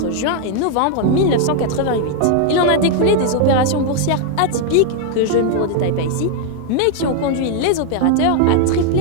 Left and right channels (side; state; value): both; different; correlation 0.00